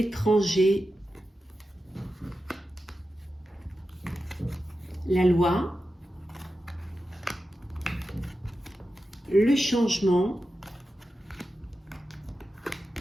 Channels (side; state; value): both; normal; correlation 0.91